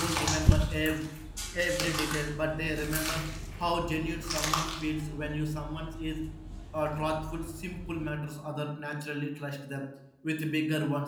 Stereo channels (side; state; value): both; identical; correlation 1.00